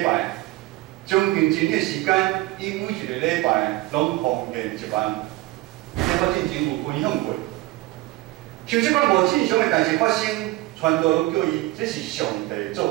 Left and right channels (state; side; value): quieter; left; 18.6 dB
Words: 拜，将近1年时间，伊每一个礼拜拢奉献1万。这我之前有分享过。像这款无正常的代志发生，传道拢叫伊这是上帝